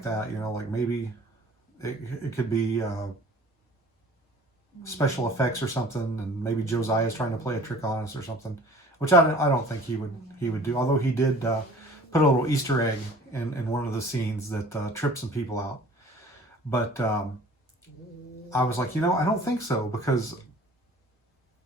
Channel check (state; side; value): normal; both; correlation 0.48